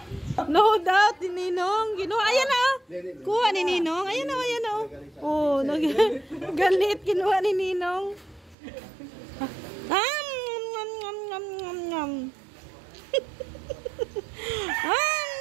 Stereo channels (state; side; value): drops out; left; at 8.6 s